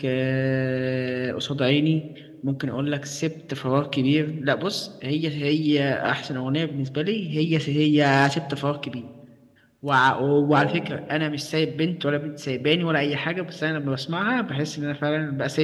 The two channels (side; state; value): both; identical; correlation 1.00